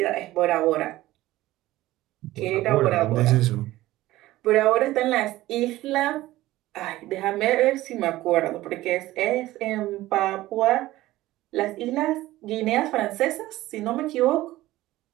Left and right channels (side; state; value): left; quieter; 16.6 dB